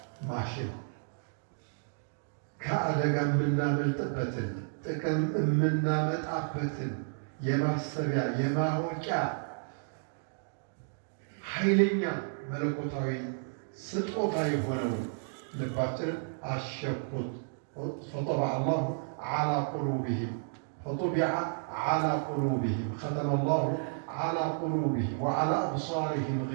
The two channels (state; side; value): silent; left; digital silence